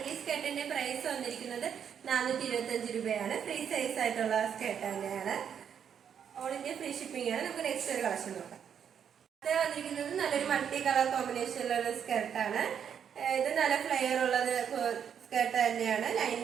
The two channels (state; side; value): quieter; left; 8.1 dB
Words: ഈ സ്കേർട്ടിന്റെ പ്രൈസ് വന്നിരിക്കുന്നത് 425 രൂപയാണ്. ഫ്രീ സൈസ് ആയിട്ടുള്ള സ്കേർട്ട് തന്നെയാണ്. ഓൾ ഇന്ത്യ ഫ്രീ ഷിപ്പിംഗ് ആണ്. നമുക്ക് നെക്സ്റ്റ് ഒരു കളക്ഷൻ നോക്കാം. ഇത് വന്നിരിക്കുന്നത് നല്ലൊരു മൾട്ടി കളർ കോമ്പിനേഷനിലുള്ള സ്കേർട്ടാണ്. ഇത് നല്ല ഫ്ലെയർ ഉള്ളത് സ്കേർട്ട് തന്നെയാണ്.